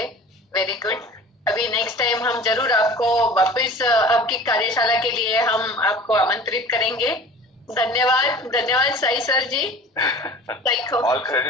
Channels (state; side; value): normal; both; correlation 0.41